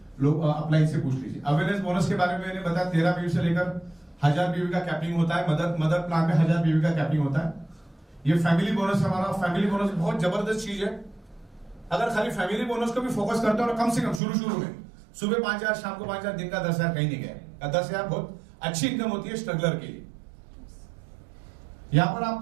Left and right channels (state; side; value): drops out; left; at 14.2 s